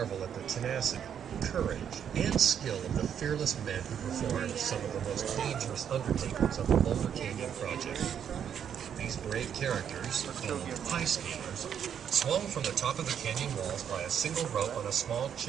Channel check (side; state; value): left; quieter; 8.5 dB